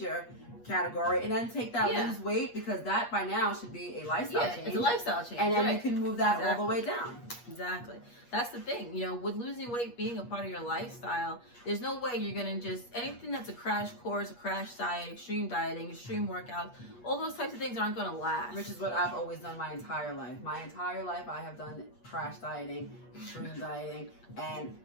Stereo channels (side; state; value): right; late; 8.4 ms